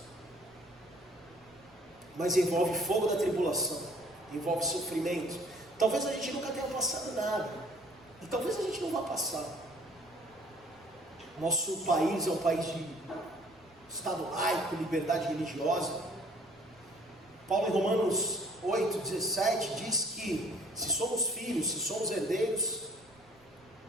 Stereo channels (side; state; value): right; noise; rumble, 29 dB below the sound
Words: mas envolve fogo da tribulação, envolve sofrimento. Talvez a gente nunca tenha passado nada, e talvez a gente não vá passar. Nosso país é um país de Estado laico, liberdade religiosa. Paulo em Romanos 8,17 diz que se somos filhos, se somos herdeiros,